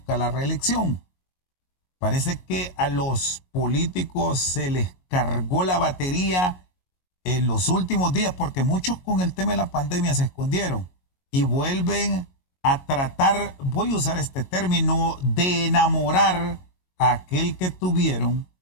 la reelección. Parece que a los políticos se les cargó la batería en los últimos días porque muchos con el tema de la pandemia se escondieron y vuelven a tratar, voy a usar este término, de enamorar a aquel que tuvieron,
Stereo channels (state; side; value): late; right; 22 ms